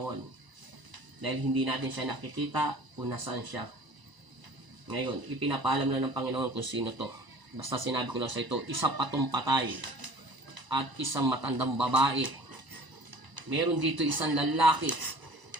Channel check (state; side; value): late; left; 1.0 ms